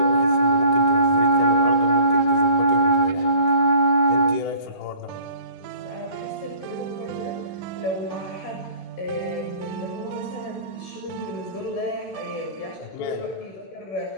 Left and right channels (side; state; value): right; late; 16 ms